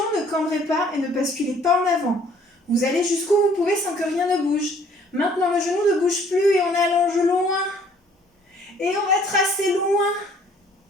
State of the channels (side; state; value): both; normal; correlation 0.59